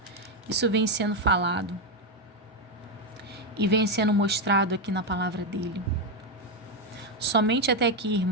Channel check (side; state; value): both; normal; correlation 0.06